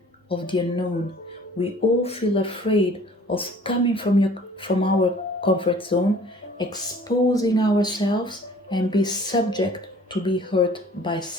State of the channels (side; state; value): both; normal; correlation 0.51